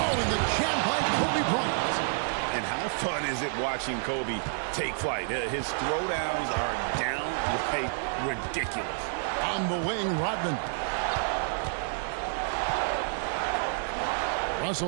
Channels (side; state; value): left; silent; 58 dB below the other